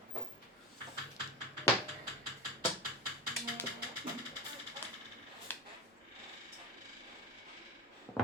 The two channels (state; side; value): normal; both; correlation 0.20